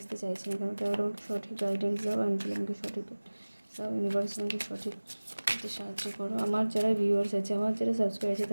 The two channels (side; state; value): both; inverted; correlation -1.00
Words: চাইছে না কেন, তারা আমাকে সঠিক গাইডেন্স দাও, অ্যাঞ্জেল আমাকে সঠিক দাও, ইউনিভার্স আমাকে সঠিক সাহায্য করো। আমার যারা ভিউয়ার্স আছে, আমার যারা সাবস্ক্রাইবার আছে,